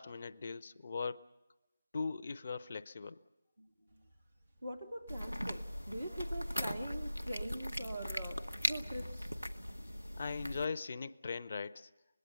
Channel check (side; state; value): both; inverted; correlation -0.92